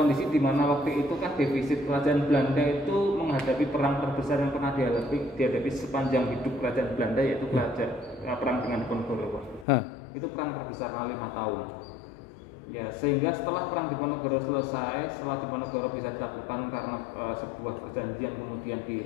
di mana waktu itu kan defisit kerajaan Belanda itu menghadapi perang terbesar yang pernah dihadapi sepanjang hidup kerajaan Belanda, yaitu perang dengan Diponegoro. Itu perang terbesar 5 tahun. Ya, sehingga setelah perang Diponegoro selesai, setelah Diponegoro bisa dilakukan karena sebuah perjanjian kemudian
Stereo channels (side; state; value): right; drops out; at 9.7 s